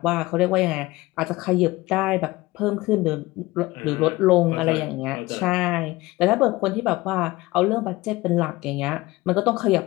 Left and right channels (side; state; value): right; quieter; 20.0 dB